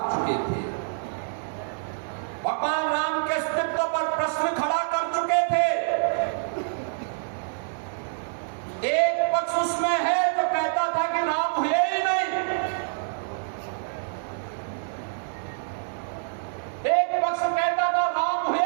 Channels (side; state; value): left; silent; 60 dB below the other